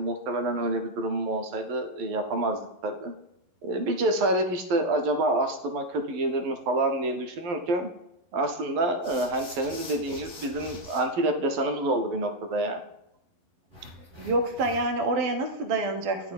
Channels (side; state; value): left; late; 11 ms